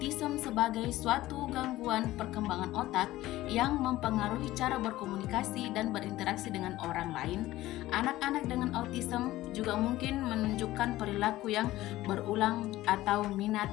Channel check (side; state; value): right; quieter; 16.3 dB